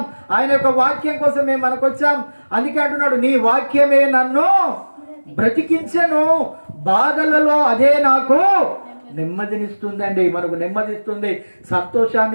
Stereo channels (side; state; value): both; inverted; correlation -1.00